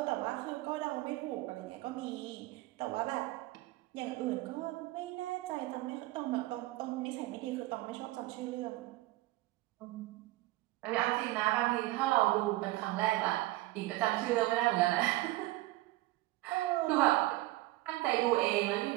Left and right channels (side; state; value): left; quieter; 18.5 dB